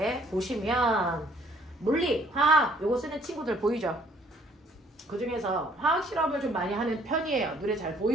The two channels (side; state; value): both; normal; correlation 0.62